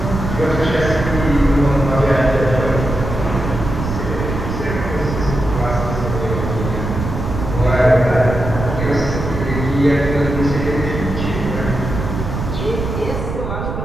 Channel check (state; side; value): noise; right; rumble, 5 dB below the sound